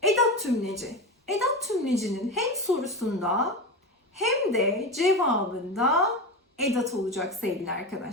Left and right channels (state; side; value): normal; both; correlation 0.21